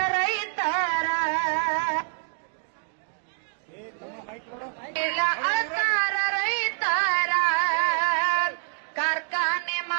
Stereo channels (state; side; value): silent; left; digital silence